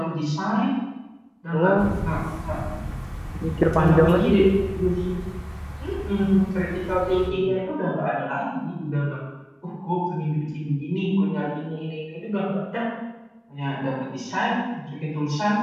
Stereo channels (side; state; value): both; identical; correlation 1.00